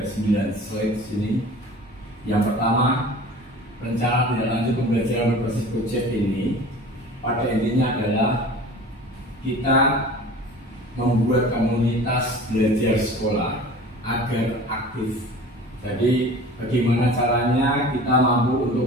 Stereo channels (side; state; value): both; normal; correlation 0.41